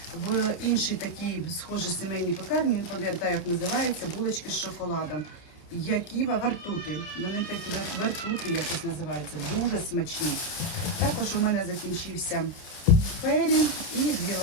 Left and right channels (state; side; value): late; right; 29 ms